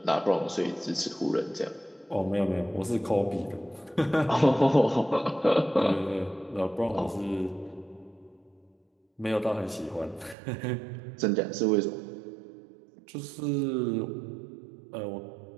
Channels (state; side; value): drops out; left; at 10.4 s